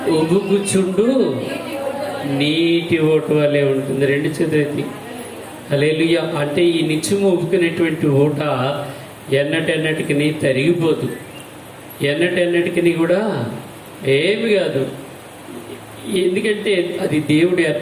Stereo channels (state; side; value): identical; both; correlation 1.00